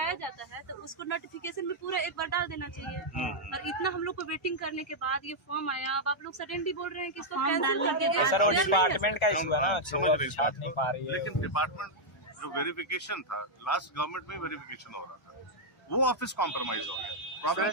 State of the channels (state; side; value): normal; both; correlation -0.04